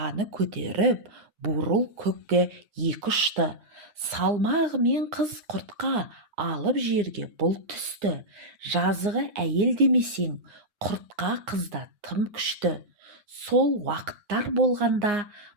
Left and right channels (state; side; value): late; left; 9.7 ms